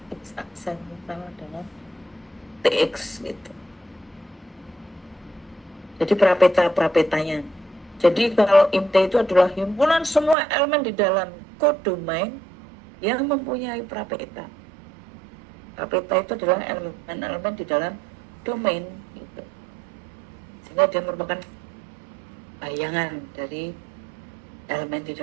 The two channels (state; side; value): drops out; left; at 10.4 s